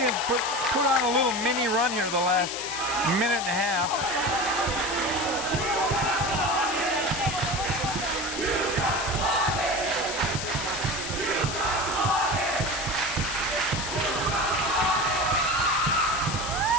put on a little mini run here the last minute and a half.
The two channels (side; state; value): left; noise; hiss, 6 dB below the sound